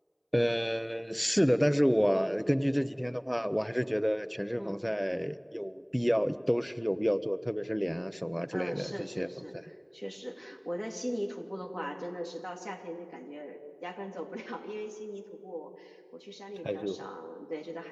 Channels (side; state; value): both; identical; correlation 1.00